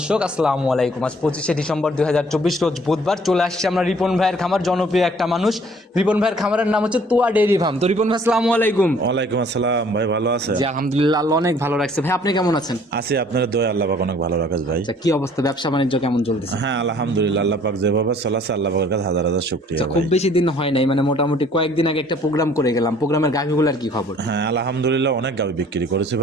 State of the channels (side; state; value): both; normal; correlation 0.57